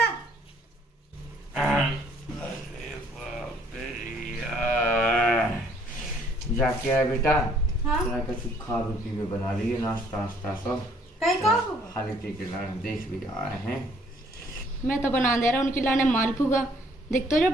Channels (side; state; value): both; normal; correlation 0.63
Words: जाके आए बेटा हाँ कुछ खा पी के बना लिए नाश्ता वास्ता सब कहीं का खाली पी के लाने देख भी आए हैं। मैं तो बना दे रहा उनके लाने मालपुआ देख तो